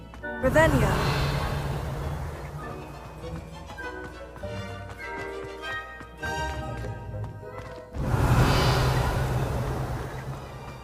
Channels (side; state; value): both; identical; correlation 1.00